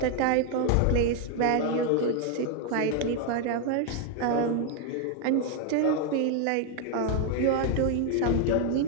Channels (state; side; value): different; both; correlation 0.01